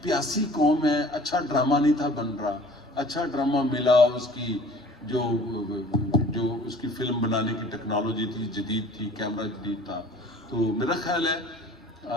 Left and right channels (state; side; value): normal; both; correlation 0.49